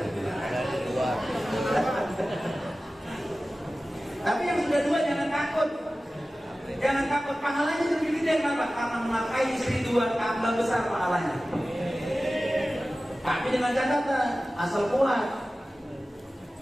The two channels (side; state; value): both; normal; correlation 0.96